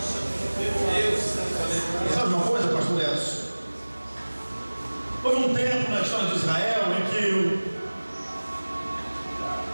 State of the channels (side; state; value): both; inverted; correlation -1.00